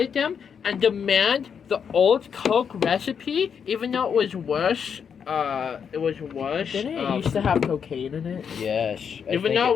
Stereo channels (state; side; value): quieter; right; 7.1 dB